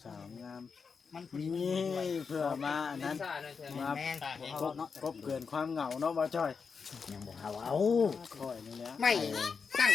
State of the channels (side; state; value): right; quieter; 5.5 dB